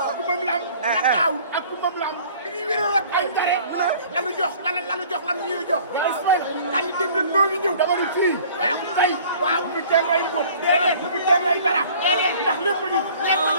ku moom lam. la daawur ak ku moom lam. bi ñuy wéral ak ay njare. lanu jox lanu ñuy jox. kan ni dem na noo ngi ñëw. dama ni fii. waaw tey. waaw bu kenn lay mbóot. déedéet bu kenn lay dara. ndax lépp a ngi.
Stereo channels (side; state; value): both; inverted; correlation -0.51